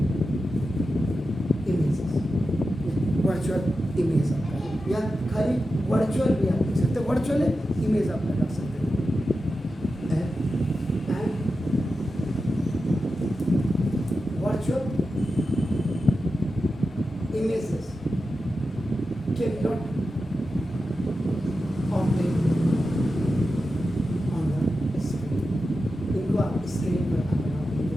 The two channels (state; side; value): normal; both; correlation 0.91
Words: images. Virtual image आपका या खाली वर्चुअल भी आप लिख सकते हैं, वर्चुअल इमेज आप लगा सकते हैं. Virtual images cannot obtain on the screen. इनको आप स्क्रीन पर अपना